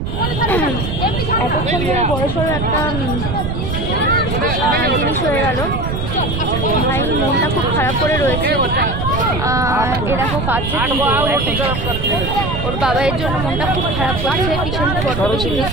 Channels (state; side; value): noise; right; rumble, 3 dB below the sound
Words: এতক্ষণ ধরে বড়সড় একটা জিনিস হয়ে গেল। ভাই মনটা খুব খারাপ করে রয়েছে। এরকম কাঁদছে, ওর বাবার জন্য মনটা খুব খারাপ করছে। পিছনটা বড্ড বেশি মিস